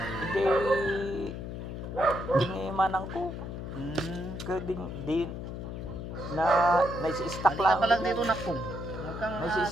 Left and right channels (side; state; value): left; noise; hum, 7 dB below the sound